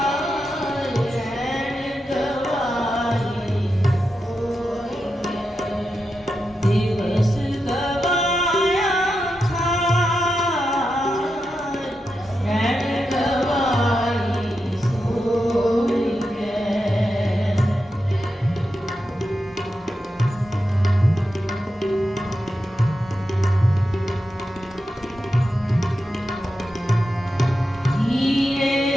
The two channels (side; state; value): both; normal; correlation 0.88